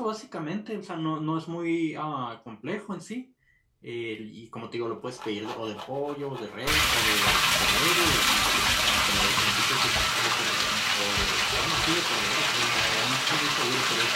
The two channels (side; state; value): both; identical; correlation 1.00